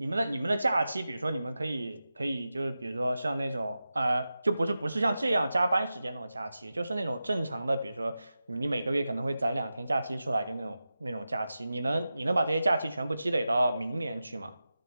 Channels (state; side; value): inverted; both; correlation -0.92